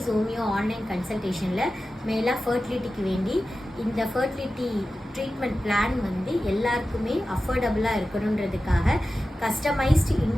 ஹோமியோ ஆன்லைன் கன்சல்டேஷனில் மேலாக ஃபர்டிலிட்டிக்கு வேண்டி இந்த ஃபர்டிலிட்டி ட்ரீட்மெண்ட் பிளான் வந்து எல்லாருக்குமே அஃபோர்டபுளாக இருக்கணுன்றதுக்காக கஸ்டமைஸ்டு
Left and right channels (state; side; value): normal; both; correlation 0.94